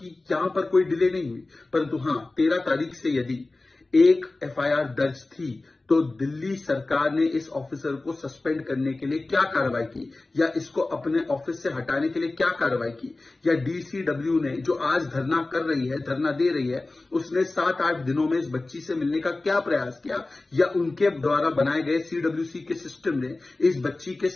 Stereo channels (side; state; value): right; quieter; 3.1 dB